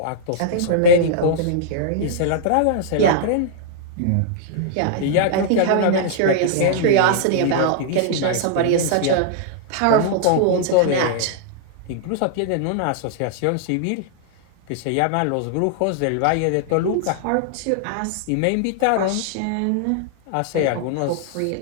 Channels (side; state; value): both; different; correlation -0.01